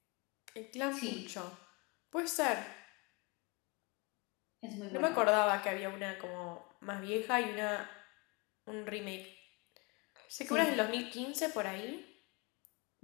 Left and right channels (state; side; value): quieter; right; 29.2 dB